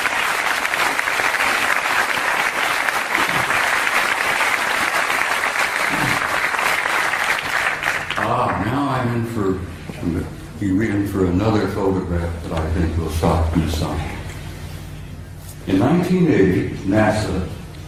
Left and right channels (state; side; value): identical; both; correlation 1.00